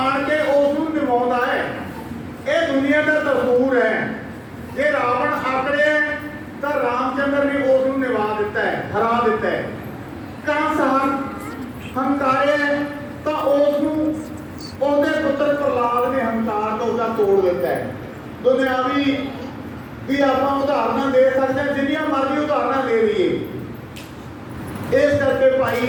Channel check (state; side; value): identical; both; correlation 1.00